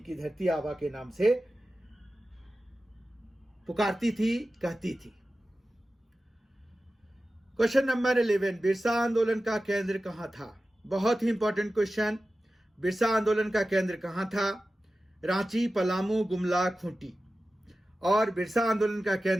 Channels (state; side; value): normal; both; correlation 0.94